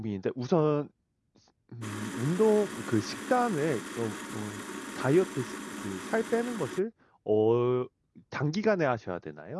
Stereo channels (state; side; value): identical; both; correlation 1.00